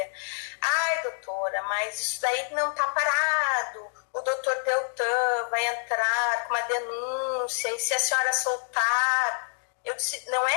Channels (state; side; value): silent; right; 60 dB below the other